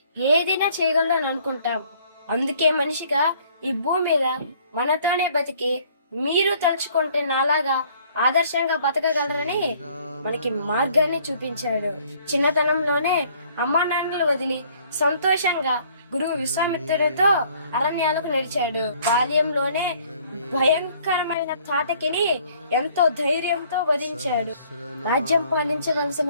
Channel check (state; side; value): inverted; both; correlation -0.59